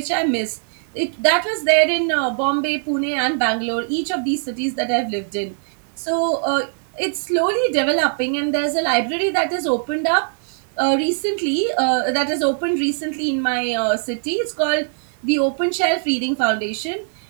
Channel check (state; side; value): silent; left; digital silence